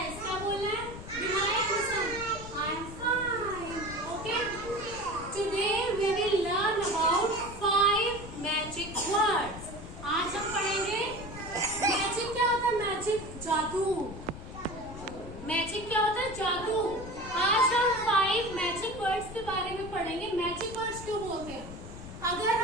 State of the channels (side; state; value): left; noise; rumble, 12 dB below the sound